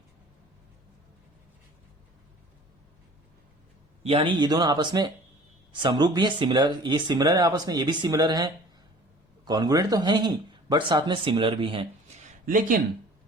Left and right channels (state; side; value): normal; both; correlation 0.47